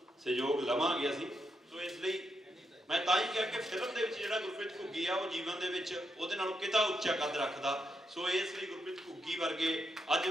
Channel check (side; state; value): both; normal; correlation 0.82